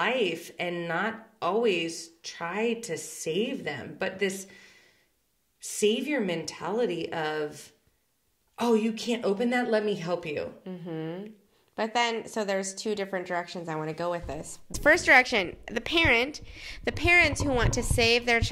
and not always try to save them. But this savior mentality of, oh, you can't open that? Let me help you. Mm-hmm. But then, so there's 2 different directions I want to go with this. First direction, the parents who want to save their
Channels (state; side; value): identical; both; correlation 1.00